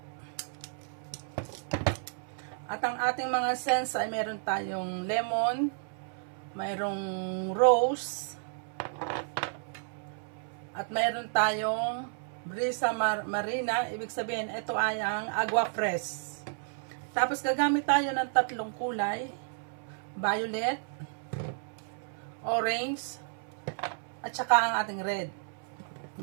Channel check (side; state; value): left; silent; 57 dB below the other